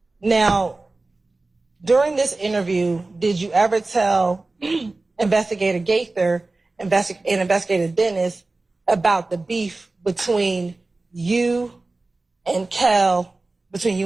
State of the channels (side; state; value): left; quieter; 3.2 dB